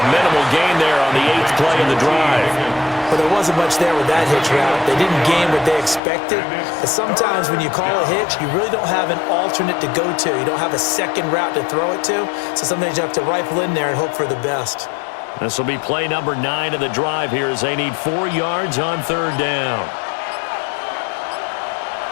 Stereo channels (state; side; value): drops out; right; at 6.0 s